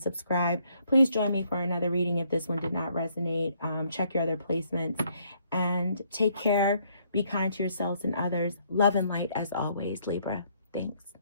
subscribe. Please join me for another reading if this one did not resonate. Check your other placements, and take care. Be kind to yourselves and others. Love and light as always, Libra. Thanks.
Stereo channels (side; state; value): both; inverted; correlation -0.68